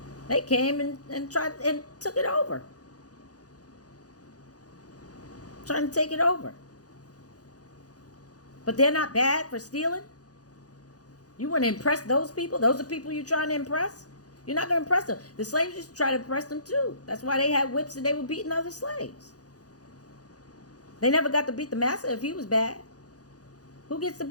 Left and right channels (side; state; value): right; late; 0.67 ms